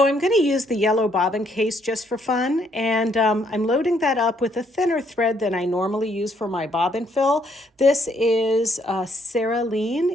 I'm going to use the yellow bobbin case just for fun, and I'm loading that up with a thinner thread than I normally use for my bobbin fill. This is Cerulean.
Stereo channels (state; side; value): normal; both; correlation 0.70